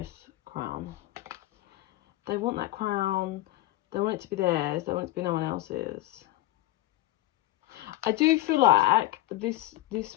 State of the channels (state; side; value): quieter; right; 16.0 dB